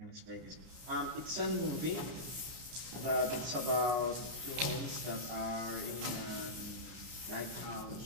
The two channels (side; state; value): left; late; 32 ms